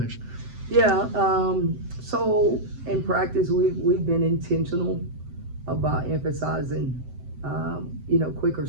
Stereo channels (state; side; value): late; left; 7.8 ms